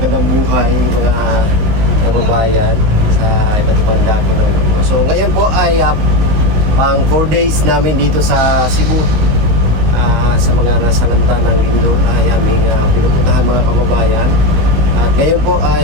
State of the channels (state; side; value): late; left; 19 ms